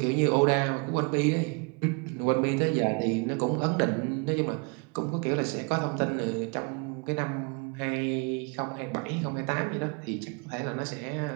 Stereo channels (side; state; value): left; quieter; 32.5 dB